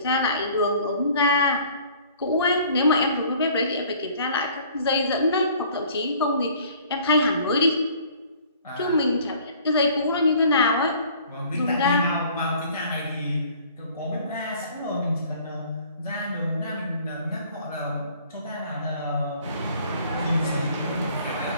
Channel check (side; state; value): both; inverted; correlation -0.54